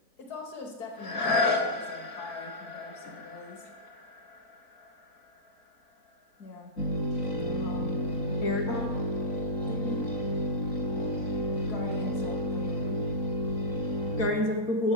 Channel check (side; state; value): right; late; 3.9 ms